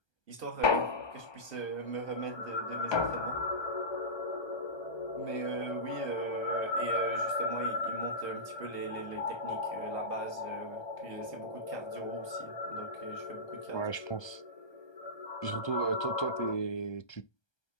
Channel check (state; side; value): late; right; 1.2 ms